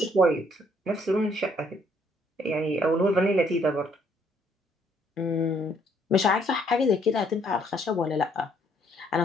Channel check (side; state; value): both; normal; correlation 0.67